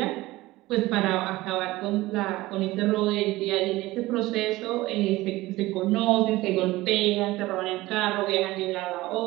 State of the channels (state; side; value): quieter; left; 18.6 dB